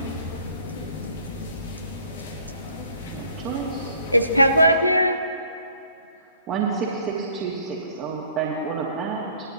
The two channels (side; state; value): both; inverted; correlation -0.57